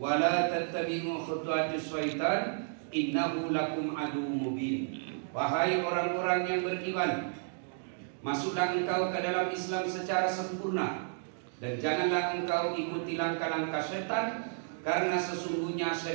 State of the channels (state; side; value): silent; left; digital silence